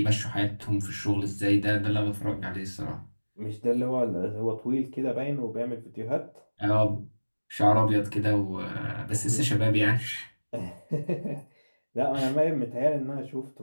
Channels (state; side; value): inverted; both; correlation -1.00